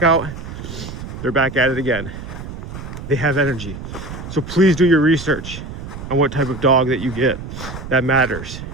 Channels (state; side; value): noise; right; rumble, 10 dB below the sound